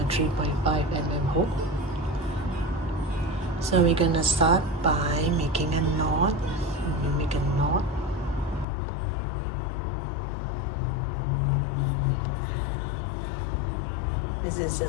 3.5 mm hook. So we're gonna start by making a knot. We make a knot. This is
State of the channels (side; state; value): right; drops out; at 8.7 s